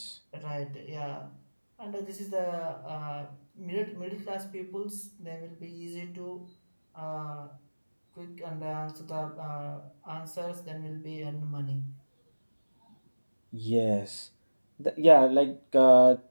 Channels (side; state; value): both; inverted; correlation -1.00